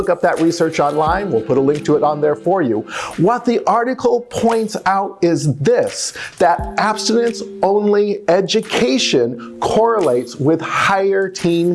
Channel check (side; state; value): both; identical; correlation 1.00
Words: up that research online. We'll put a link to it on there for you. What the article points out is this, that abstinence only education correlates with higher